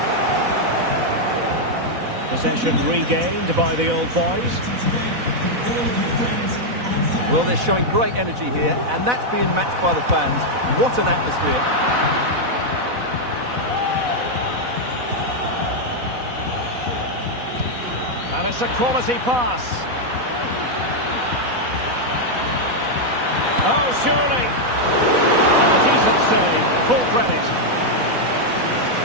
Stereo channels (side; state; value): left; late; 4.0 ms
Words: Possession regained by the old boys. Well, they're showing great energy here, and that's being matched by the fans. What an atmosphere. And it's a quality pass. Oh, surely. And a decent save. Full credit.